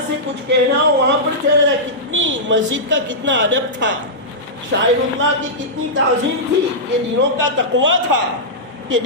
سے کچھ کہنا ہو وہاں پر چلا جائے۔ کتنی مسجد کا کتنا ادب تھا، شاعر اللہ کی کتنی تعظیم تھی، یہ دنوں کا تقویٰ تھا، یہ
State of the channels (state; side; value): normal; both; correlation -0.12